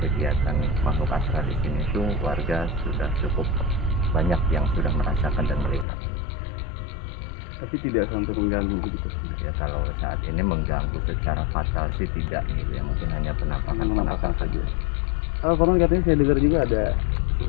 makhluk astral di sini itu warga sudah cukup banyak yang sudah merasakan dan melihat. Tapi tidak sampai mengganggu begitu. Ya kalau saat ini mengganggu secara fatal sih tidak gitu ya, mungkin hanya penampakan saja. Kalau konon katanya saya dengar juga ada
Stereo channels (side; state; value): right; drops out; at 5.9 s